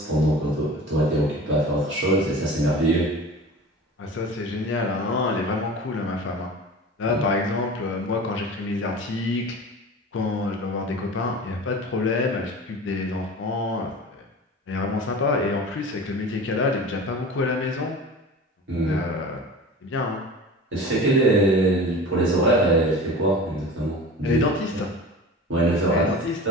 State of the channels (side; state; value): both; normal; correlation 0.36